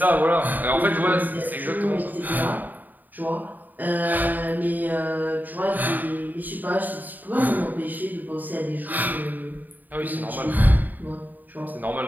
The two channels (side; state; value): left; late; 0.086 ms